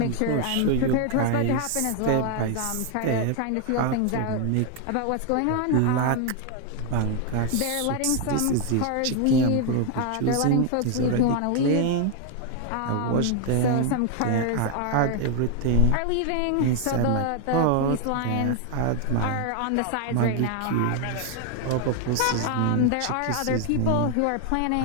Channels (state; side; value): different; both; correlation 0.01